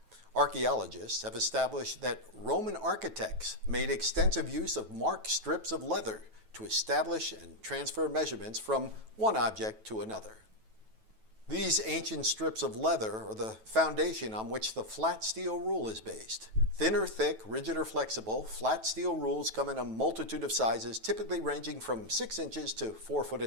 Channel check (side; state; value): left; late; 9.2 ms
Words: Archaeologists have established that Roman architects made extensive use of marked strips of leather to establish and transfer measurements from one object to another. These ancient strips of leather are the foundation on which the flat steel rule is based. Thin or thick, rigid or flexible, flat steel rules come in a multitude of sizes, typically ranging from 6 inches to 4 foot